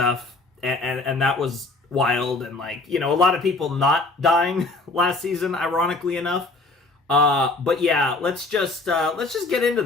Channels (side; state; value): right; quieter; 3.2 dB